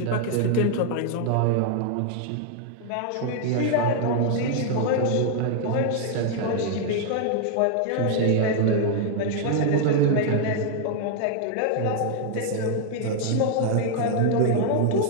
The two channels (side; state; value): both; different; correlation 0.00